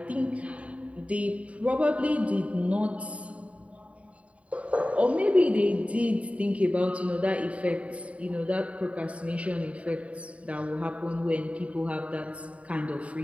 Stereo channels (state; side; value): late; left; 0.065 ms